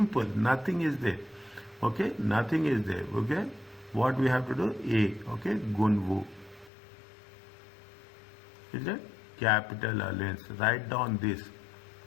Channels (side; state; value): right; drops out; at 6.7 s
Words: nothing is there. Okay, nothing is there. Okay, what we have to do? A. Okay, Gunvu. Is it? Capital allowance. Write down this.